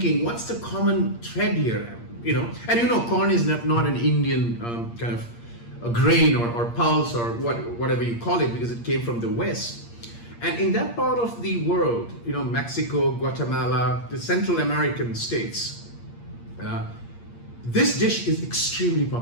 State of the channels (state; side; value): late; right; 8.6 ms